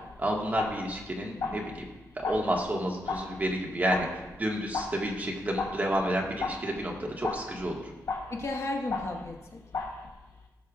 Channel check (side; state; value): both; normal; correlation 0.79